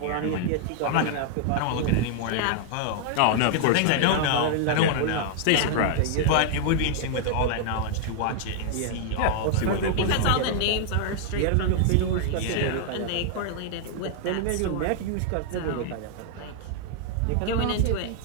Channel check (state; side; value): different; both; correlation 0.00